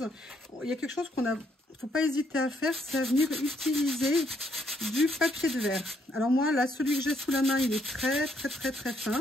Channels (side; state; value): both; normal; correlation 0.72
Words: il y a quelque chose qu'on a, faut pas hésiter à faire, c'est à venir utiliser du papier de verre. Alors moi, là, celui que j'ai sous la main, il est très fin.